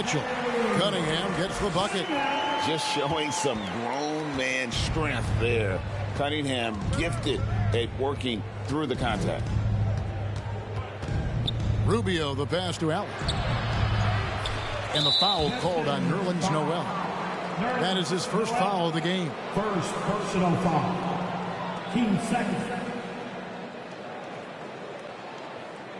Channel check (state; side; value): identical; both; correlation 1.00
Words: Cunningham gets the bucket. Just showing some grown man strength there. Cunningham gifted at working through the contact. Rubio the pass to Allen. And the foul called on Nerlens Noel. That is his first foul of the game. First personal foul. Team second.